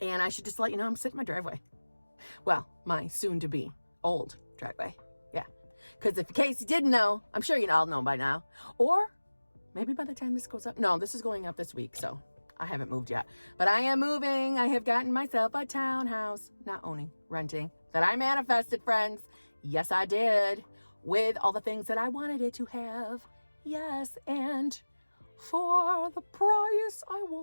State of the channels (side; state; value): both; inverted; correlation -1.00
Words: And I should just let you know I'm sitting in my driveway. Well, my soon-to-be old driveway. Yeah, because if in case you didn't know, I'm sure you all know by now. Or maybe by the time this goes up. No, this is going up this week, so I haven't moved yet. But I am moving. I have gotten myself a townhouse. Not owning, renting. That I manifested, friends. Yes, I did. With all the things that I wanted it to have. Yes, and for the price I